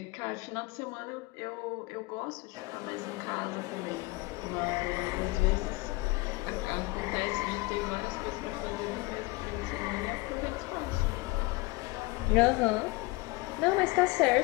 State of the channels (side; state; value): right; quieter; 23.2 dB